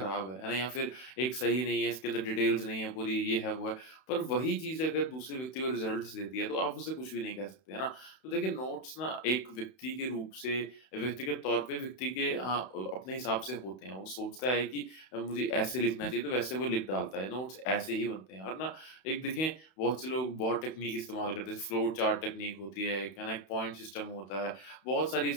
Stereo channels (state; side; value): late; right; 31 ms